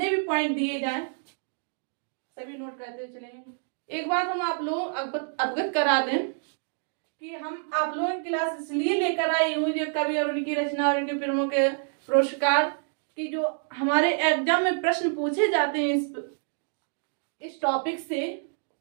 भी पॉइंट दिए जाएं सभी नोट करते हुए चलेंगे। एक बात हम आप लोग अवगत करा दें कि हम आप लोगों की क्लास इसलिए लेकर आई हूँ जो कवि और उनकी रचना और उनके फिल्मों के पुरस्कार की जो हमारे एग्जाम में प्रश्न पूछे जाते हैं इस टॉपिक से,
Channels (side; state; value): left; silent; 60 dB below the other